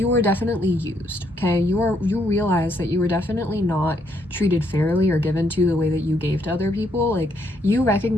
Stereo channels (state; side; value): normal; both; correlation 0.73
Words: used, okay? You realized that you were definitely not treated fairly or given to the way that you gave to other people. Like, you